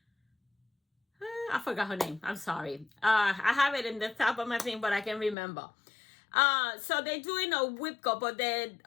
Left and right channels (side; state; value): right; drops out; at 5.4 s